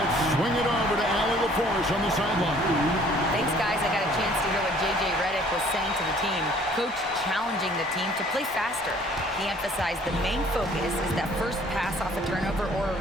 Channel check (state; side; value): normal; both; correlation 0.56